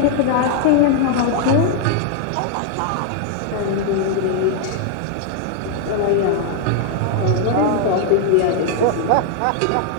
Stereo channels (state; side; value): different; both; correlation 0.00